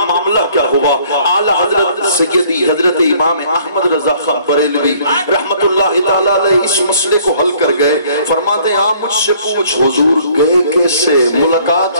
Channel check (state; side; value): inverted; both; correlation -0.59